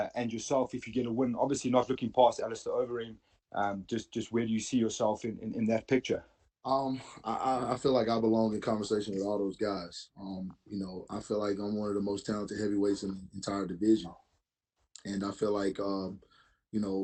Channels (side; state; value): both; identical; correlation 1.00